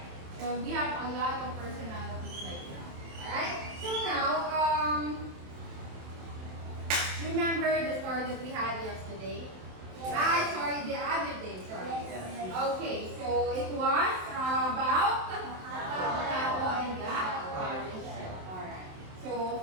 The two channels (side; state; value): left; late; 27 ms